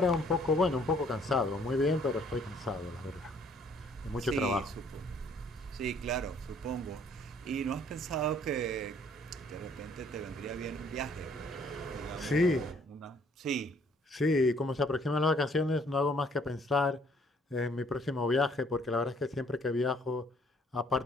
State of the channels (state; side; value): normal; both; correlation 0.61